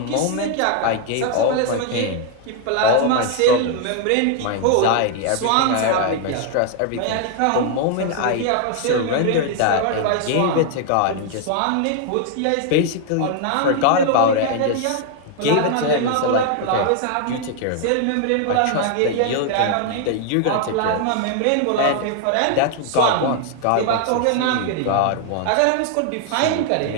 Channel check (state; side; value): different; both; correlation 0.00